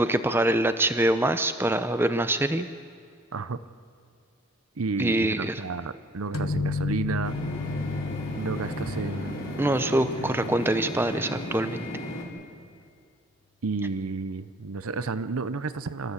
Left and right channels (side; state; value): both; normal; correlation 0.56